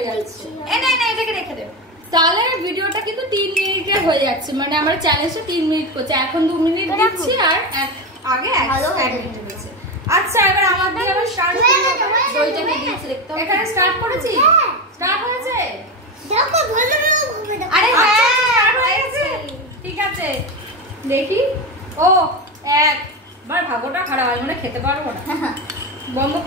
যাচ্ছে। না এটাকে রেখে দে। তাহলে ভিডিওটা কিন্তু 3 মিনিটে হয়ে যাচ্ছে, মানে আমরা চ্যালেঞ্জটা 3 মিনিট করছি, এখন 2 মিনিট দিচ্ছি আর আগে 1 মিনিট হয়েছে। আচ্ছা এবার আমার দিয়ে আবার স্টার্ট করব। দইটাকে দিয়েছি দেখতে, এখানে স্টার্ট করেছি, স্টার্ট হয়েছে। দেখো বলো না, আরে হ্যাঁ স্টার্ট হয়ে গেছে। ঠিক আছে দেখি। ও 1 বার ভাগটা খারাপ হয়, মানে খেতে পারবো না। বন্ধ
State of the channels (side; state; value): both; normal; correlation 0.17